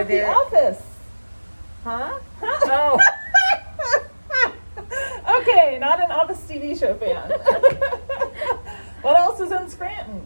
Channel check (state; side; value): inverted; both; correlation -1.00